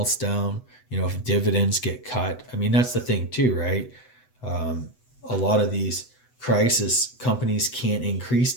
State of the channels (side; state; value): right; late; 8.0 ms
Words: down, if dividends get cut. I mean, that's the thing too, right? A lot of these crisis companies can't increase